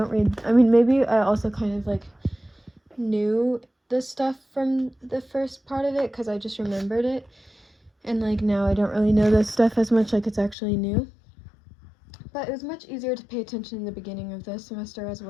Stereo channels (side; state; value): right; drops out; at 10.6 s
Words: read, I mean, maybe I also kind of like knew the stuff from the first part of it because I just remembered it, and like now I don't really know this stuff as much, like it's actually new. But it was much easier to pay attention in the beginning of the semester as